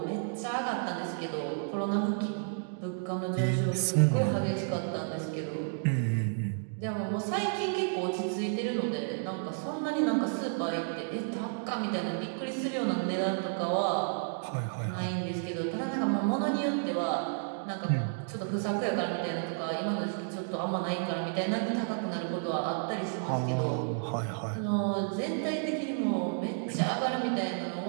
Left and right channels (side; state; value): left; silent; digital silence